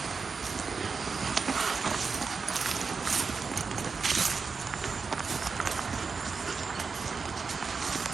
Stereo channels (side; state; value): left; quieter; 5.0 dB